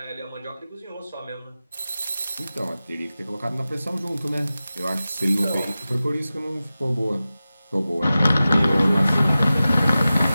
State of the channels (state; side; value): inverted; both; correlation -0.95